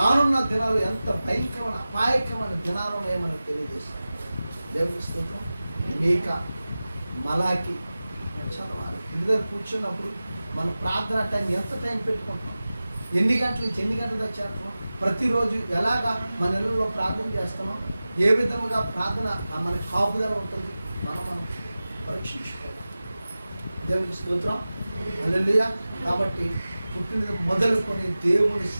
దినాలు ఎంత భయంకరమైన అపాయకరమైన దినాలు ఏమని తెలియజేస్తాడు. దేవుడి స్తోత్రం. మీకా, మలాకి చదవాలి. ఇంటి దగ్గర కూర్చున్నప్పుడు మన ప్రార్థన టైం ఎంత టైం పెట్టుకుంటున్నాం, ఎన్ని గంటల నుంచి ఎన్ని గంటల దాకా చేస్తున్నాం, ప్రతిరోజు ఎలాగా మన ఇళ్ళలో ప్రార్థన చేస్తున్నాం, ఏ విధముగా ప్రార్థన మన కాపుదల ఉంటుంది, మనం పరీక్షించుకోవాలి. దేవునికి స్తోత్రం. హల్లెలూయా. కాబట్టి పుట్టినది మొదలుకొని దేవుని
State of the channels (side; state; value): both; inverted; correlation -0.96